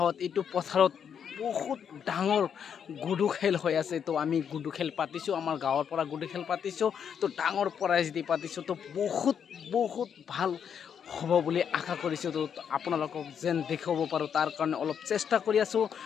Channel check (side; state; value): right; quieter; 7.8 dB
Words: এইটো পথাৰত বহুত ডাঙৰ গুডু খেল হৈ আছে। তো আমি গুডু খেল পাতিছোঁ, আমাৰ গাঁৱৰ পৰা গুডু খেল পাতিছোঁ। তো ডাঙৰ প্ৰাইজ দি পাতিছোঁ। তো বহুত ভাল হ'ব বুলি আশা কৰিছোঁ। তো আপোনালোকক যেন দেখাব পাৰোঁ তাৰ কাৰণে অলপ চেষ্টা কৰি আছোঁ।